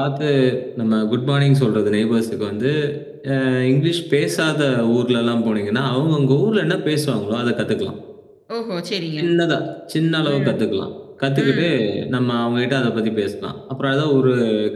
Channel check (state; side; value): identical; both; correlation 1.00